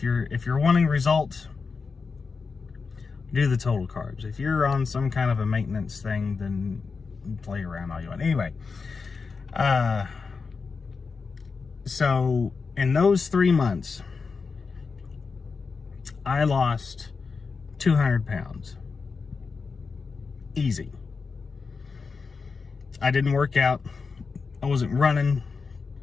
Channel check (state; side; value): quieter; right; 4.9 dB